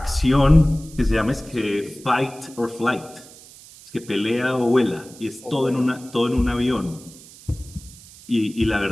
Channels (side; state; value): right; noise; hiss, 21 dB below the sound